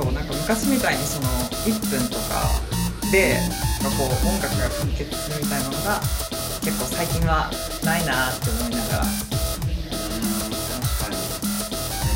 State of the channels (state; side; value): identical; both; correlation 1.00